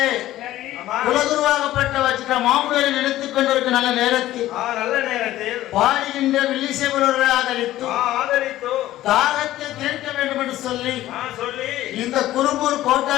சரி. ஆமா. குலகுருவாகப்பட்ட வச்சிட்ட மாமுனிவரை நினைத்துக் கொண்டிருக்க நல்ல நேரத்தில் நல்ல நேரத்தில் பாடுகின்ற வில்லிசேவரர்களை ஆதரித்து ஆதரித்து தாகத்தை தீர்க்க வேண்டும் என்று சொல்லி சொல்லி இந்த குரும்பூர்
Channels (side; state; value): right; quieter; 14.6 dB